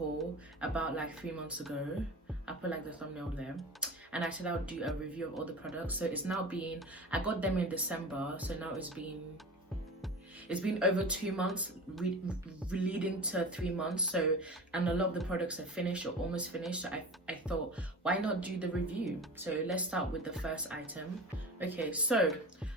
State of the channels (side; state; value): both; normal; correlation 0.33